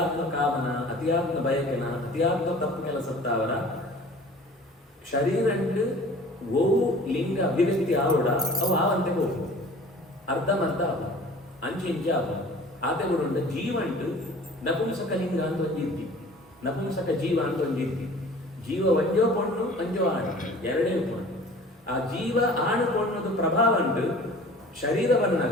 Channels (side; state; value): both; normal; correlation 0.45